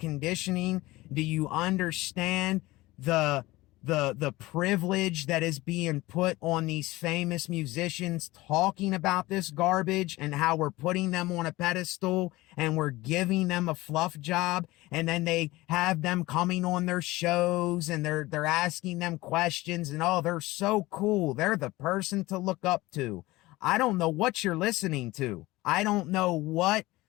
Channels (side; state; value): right; quieter; 19.4 dB